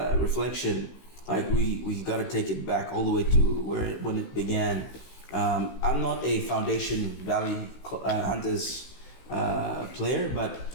like we got to take it back all the way to when it began. I'm not a Foundation Valley Hunters player,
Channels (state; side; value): late; right; 16 ms